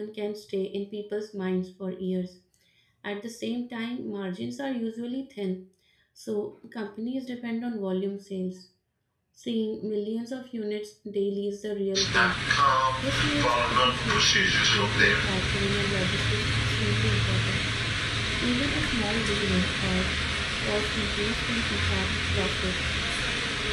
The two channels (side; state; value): both; identical; correlation 1.00